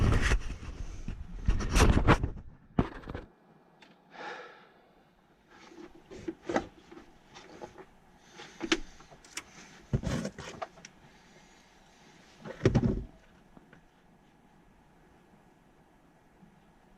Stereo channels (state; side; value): identical; both; correlation 1.00